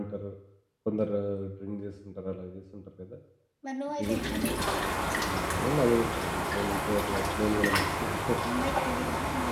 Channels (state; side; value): identical; both; correlation 1.00